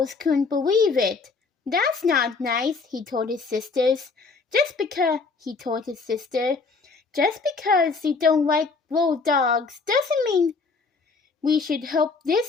couldn't believe it. That's not nice, he told his sisters. Just because they don't like little dogs doesn't mean we should help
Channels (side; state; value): right; quieter; 4.4 dB